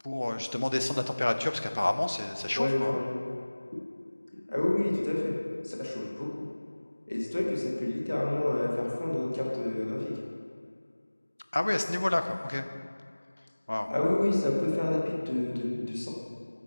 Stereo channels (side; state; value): both; inverted; correlation -1.00